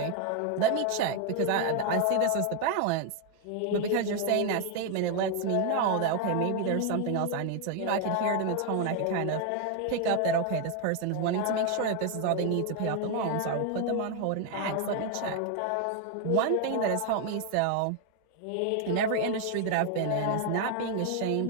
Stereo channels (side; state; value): both; different; correlation 0.01